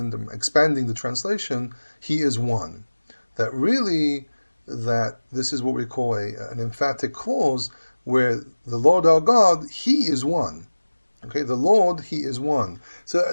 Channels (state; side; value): inverted; both; correlation -1.00